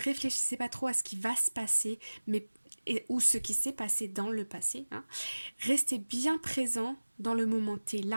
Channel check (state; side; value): inverted; both; correlation -1.00